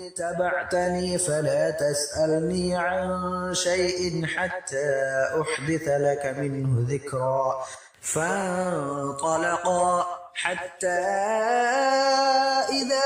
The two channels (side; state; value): both; identical; correlation 1.00